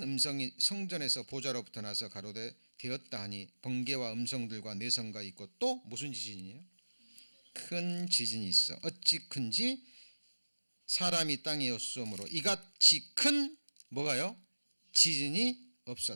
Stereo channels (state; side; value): inverted; both; correlation -1.00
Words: 음성이 성전에서 보좌로부터 나서 가로되 되었다 하니 번개와 음성들과 내성과 있고 또 무슨 지진이에요? 큰 지진이 있어. 어찌 큰지 사람이 땅에 없으므로 이같이 큰 뭐가요? 지진이